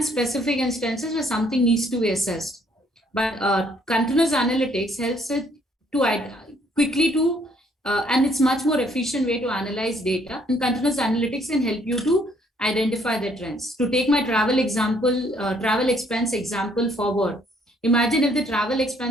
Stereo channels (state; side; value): normal; both; correlation 0.66